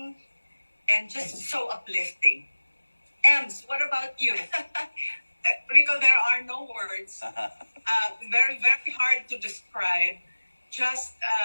and just so uplifting. Ems, what about you? Rico, there are no words. Very, very hard to describe. Just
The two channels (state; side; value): inverted; both; correlation -1.00